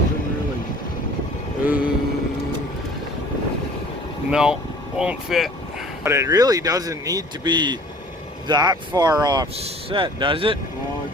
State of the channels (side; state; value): both; normal; correlation 0.49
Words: doesn't really. No, won't fit. But it really doesn't need to be that far offset, does it? Keep